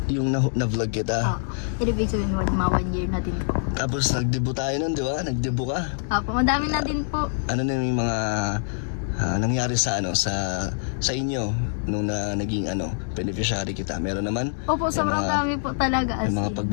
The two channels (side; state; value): right; silent; digital silence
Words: Yung na-vlog kita. Ibig sabihin, mga 1 year na din po. Tapos nag-debut tayo nun, di ba? Nag-debut ka. Opo, madami na din po. Ano na yung mga nangyari sa inyo nung naging beneficiary kita? Meron naman? Opo, sobrang dami po talaga. May mga